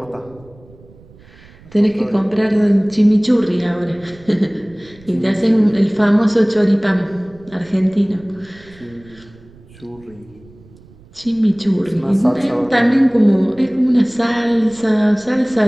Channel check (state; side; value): noise; right; rumble, 25 dB below the sound